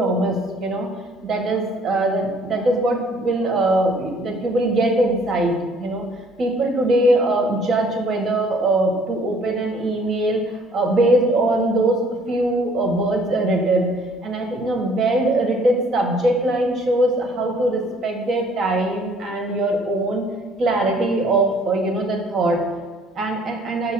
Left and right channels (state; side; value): normal; both; correlation 0.58